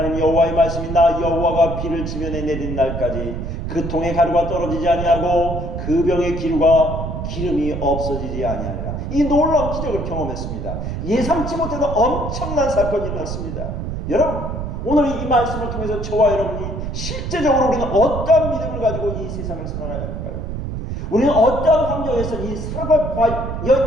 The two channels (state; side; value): noise; right; rumble, 5 dB below the sound